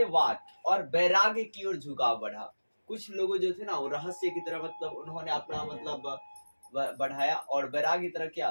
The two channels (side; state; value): both; inverted; correlation -1.00